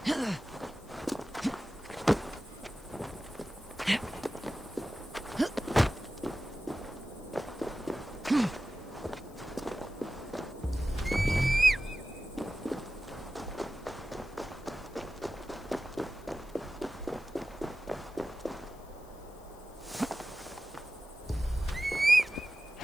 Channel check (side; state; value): left; noise; hiss, 26 dB below the sound